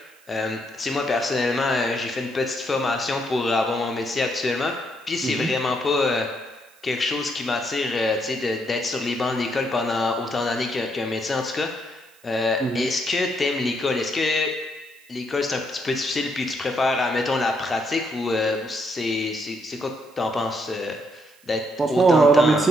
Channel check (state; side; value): noise; right; hiss, 28 dB below the sound